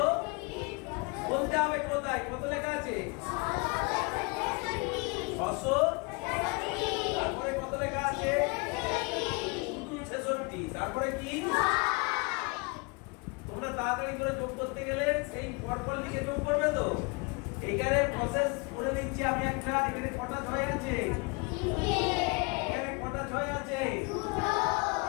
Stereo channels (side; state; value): right; quieter; 30.9 dB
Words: বলতে হবে কোথায় কত লেখা আছে? 600। তারপরে কত লেখা আছে? 66। তারপরে কি? তোমরা তাড়াতাড়ি করে যোগ করতে গেলে সেই পরপর লিখে যোগ করবে তো। এইখানে প্রসেস করে দিচ্ছি আমি একটা। এখানে কটা 6 আছে? এখানে কটা 6 আছে?